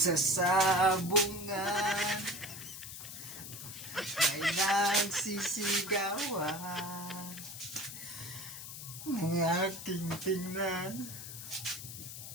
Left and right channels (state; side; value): noise; left; hiss, 10 dB below the sound